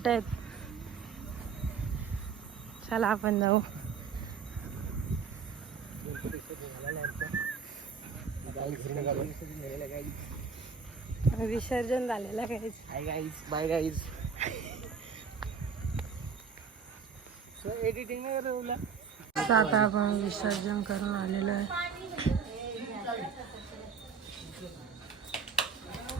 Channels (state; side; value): quieter; left; 6.0 dB